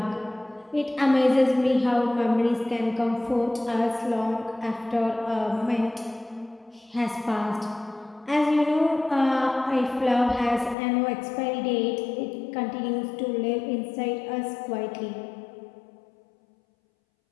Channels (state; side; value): drops out; right; at 10.8 s